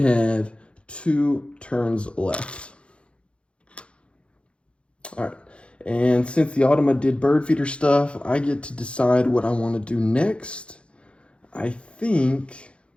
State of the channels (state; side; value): late; right; 0.058 ms